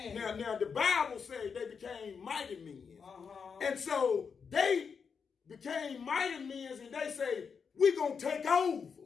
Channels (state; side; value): quieter; right; 6.0 dB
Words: this. Now the Bible says they became mighty men. Uh-huh. And so they became mighty men, and they say, we're going to take over.